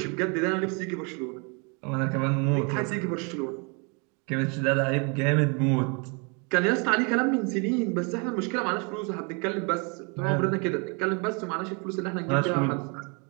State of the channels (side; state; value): left; quieter; 33.5 dB